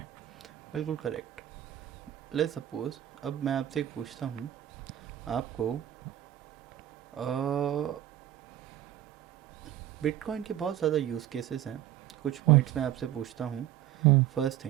बिल्कुल करेक्ट। लेट्स सपोज अब मैं आपसे एक पूछता हूँ, आपको बिटकॉइन के बहुत ज़्यादा यूज़ केसेस हैं, कुछ पॉइंट्स मैं आपसे पूछता हूँ। फर्स्ट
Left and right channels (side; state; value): left; quieter; 12.3 dB